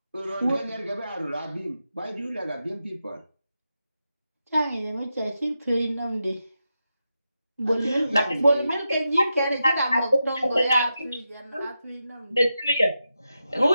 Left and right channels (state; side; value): inverted; both; correlation -0.88